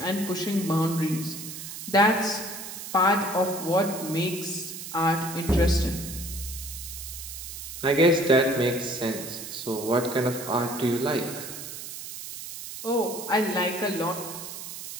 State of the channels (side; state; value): right; noise; hiss, 9 dB below the sound